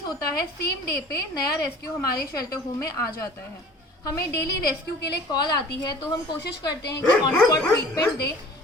होता है, सेम डे पे नया रेस्क्यू हमारे शेल्टर होम में आ जाता है। हमें डेली रेस्क्यू के लिए कॉल आती है तो हम कोशिश करते हैं कि ऑन स्पॉट ट्रीटमेंट दें।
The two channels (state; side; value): normal; both; correlation 0.46